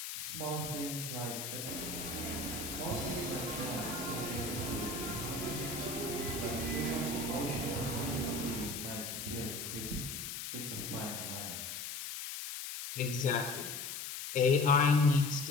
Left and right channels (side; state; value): left; noise; hiss, 6 dB below the sound